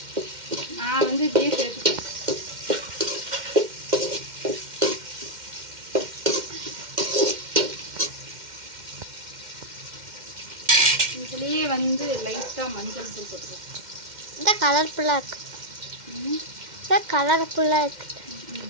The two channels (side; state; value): left; late; 2.1 ms